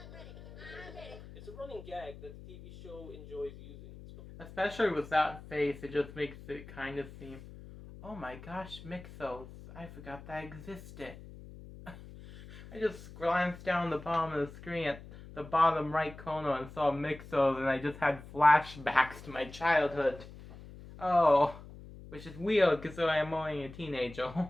ready! I'm ready! It's a running gag that the TV show enjoys using. Especially with that face, it just makes it kind of seem, oh my gosh, Mixos. I forgot that existed. I just glanced down the bottom of the screen at the bottom right corner and saw Mixos, and I just had flashbacks to my childhood. Oh, which is weird because I'm only a teenager,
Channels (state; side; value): noise; left; hum, 16 dB below the sound